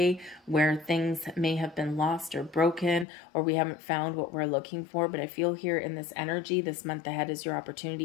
where things may have been lost or broken, or we haven't found what we're looking for. But I feel here in this energy, this month ahead is your opportunity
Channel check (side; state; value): right; drops out; at 3.1 s